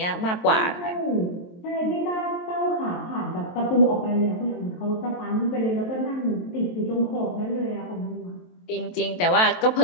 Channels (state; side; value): late; right; 23 ms